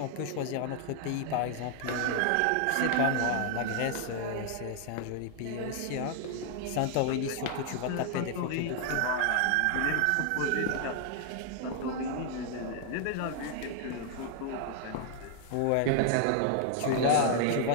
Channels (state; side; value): different; both; correlation 0.00